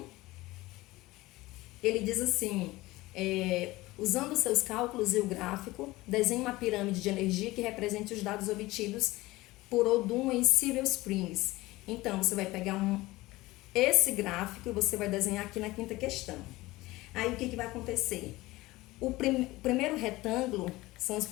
ele diz assim: usando seus cálculos e o gráfico, desenhe uma pirâmide de energia que represente os dados obtidos por Odum em Silver Springs. Então, você vai pegar esse gráfico e você vai desenhar aqui na quinta questão. Aí, o que vai acontecer? O primeiro retângulo são os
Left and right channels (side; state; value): right; quieter; 19.4 dB